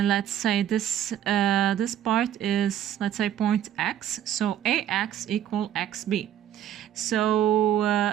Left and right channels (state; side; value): quieter; left; 10.8 dB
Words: say this part is, let's say, point X. So AX equal XB. So